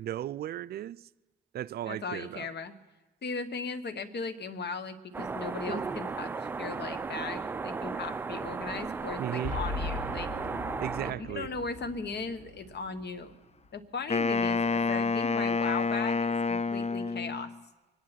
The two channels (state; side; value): normal; both; correlation 0.40